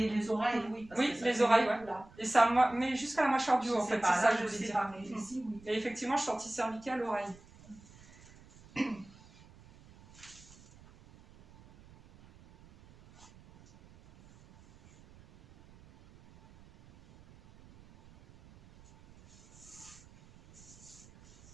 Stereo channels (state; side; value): noise; right; rumble, 24 dB below the sound